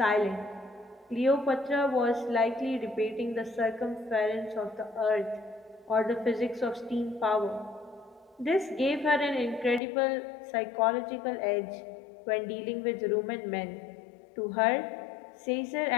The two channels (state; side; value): drops out; right; at 9.8 s